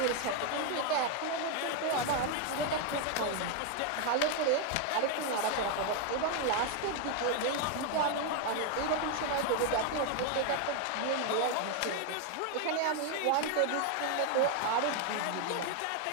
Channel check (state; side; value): different; both; correlation 0.01